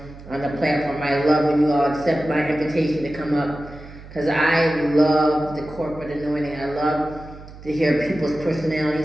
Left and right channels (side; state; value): right; noise; hum, 17 dB below the sound